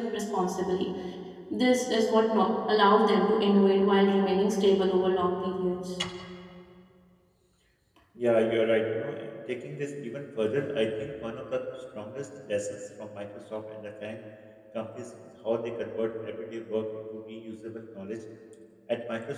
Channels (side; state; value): both; identical; correlation 1.00